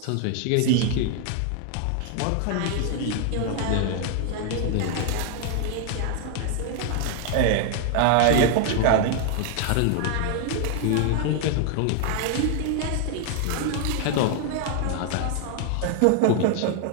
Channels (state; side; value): different; both; correlation 0.00